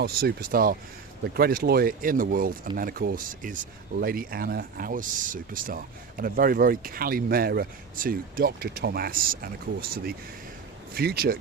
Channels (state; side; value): quieter; left; 5.7 dB